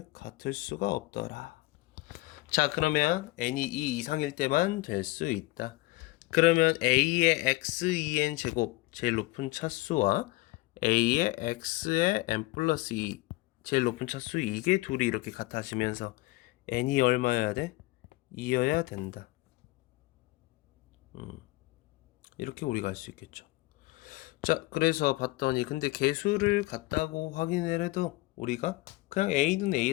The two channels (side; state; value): right; quieter; 20.7 dB